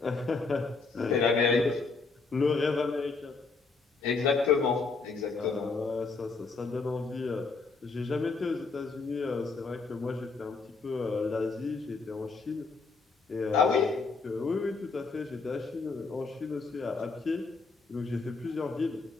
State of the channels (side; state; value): right; quieter; 4.2 dB